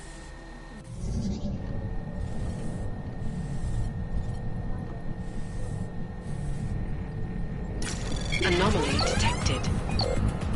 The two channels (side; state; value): both; identical; correlation 1.00